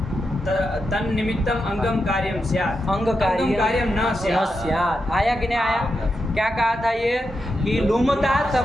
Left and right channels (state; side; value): normal; both; correlation 0.87